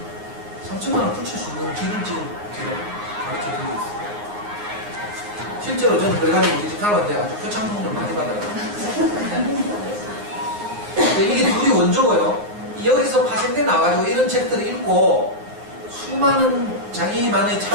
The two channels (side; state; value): left; late; 9.6 ms